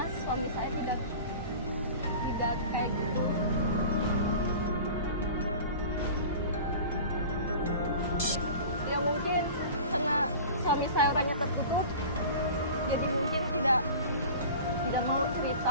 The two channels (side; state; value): both; inverted; correlation -0.38